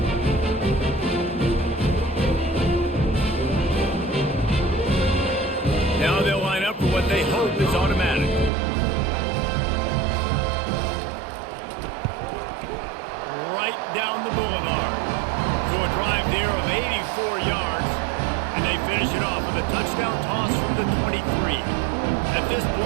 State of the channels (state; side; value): drops out; left; at 8.5 s